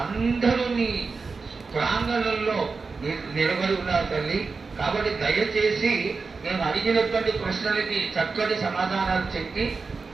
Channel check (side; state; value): left; quieter; 4.5 dB